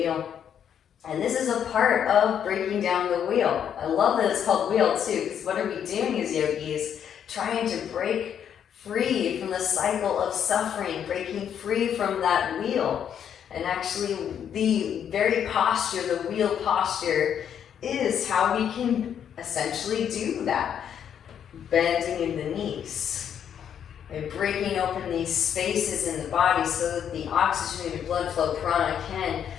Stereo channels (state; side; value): quieter; right; 8.8 dB